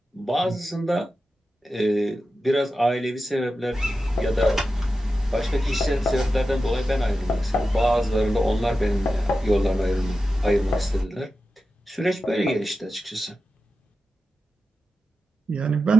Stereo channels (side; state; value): both; normal; correlation 0.92